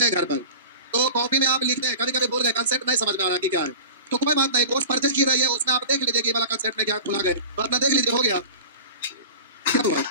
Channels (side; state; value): both; inverted; correlation -0.35